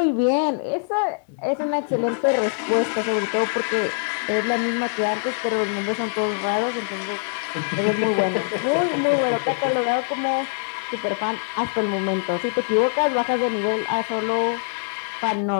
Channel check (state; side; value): silent; right; digital silence